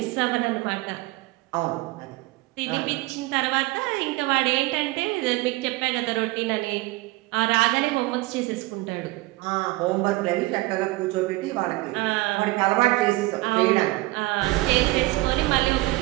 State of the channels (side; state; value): left; quieter; 20.4 dB